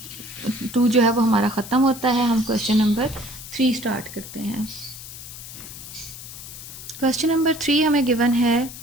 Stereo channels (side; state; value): left; noise; hiss, 13 dB below the sound